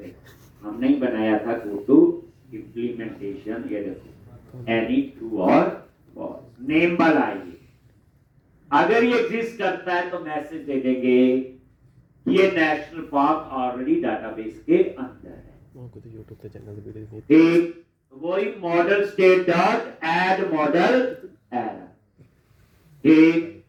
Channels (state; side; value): identical; both; correlation 1.00